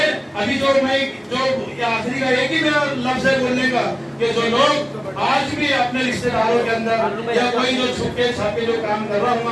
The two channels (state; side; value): identical; both; correlation 1.00